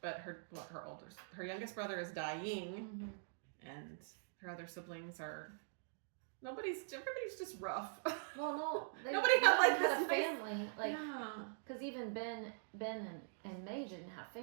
But her youngest brother is dying, and her other siblings are. Everybody's just rough. Well, no, nobody had a family, because even Ben and May didn't have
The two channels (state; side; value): silent; left; digital silence